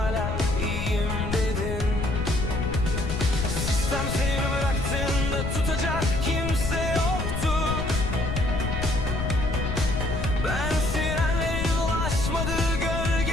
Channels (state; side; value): noise; left; rumble, 3 dB below the sound